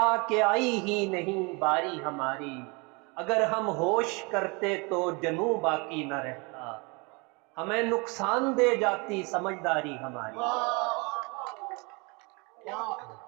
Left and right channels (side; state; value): left; quieter; 29.3 dB